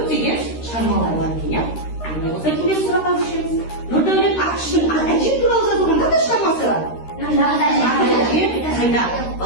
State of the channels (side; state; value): right; late; 13 ms